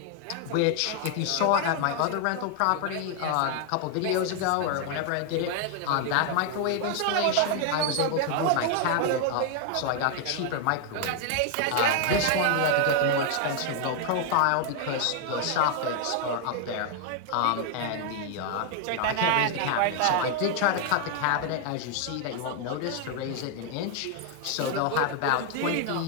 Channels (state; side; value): different; both; correlation 0.00